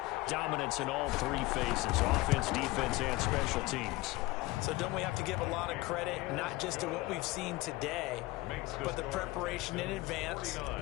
dominance in all 3 phases, offense, defense, and special teams. So don't we have to give a lot of credit, not just to what we've seen today, but the preparation in advance,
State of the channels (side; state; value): right; quieter; 20.2 dB